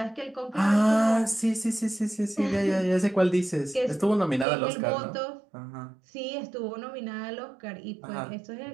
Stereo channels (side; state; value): left; drops out; at 4.5 s